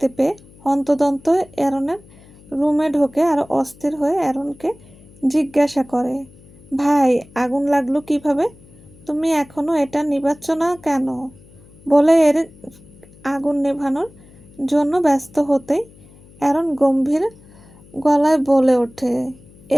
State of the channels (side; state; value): left; noise; hum, 24 dB below the sound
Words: পেয়ে হন্তদন্ত অ্যারনের রুমে ঢোকে আর অস্থির হয়ে অ্যারনকে জিজ্ঞাসা করে, ভাই আগুন লাগলো কিভাবে? তুমি এখনো এটা নিভাচ্ছ না কেন? বলে এরিক আগুন নেভানোর জন্য ব্যস্ত হতেই অ্যারন গম্ভীর গলায় বলে ওঠে,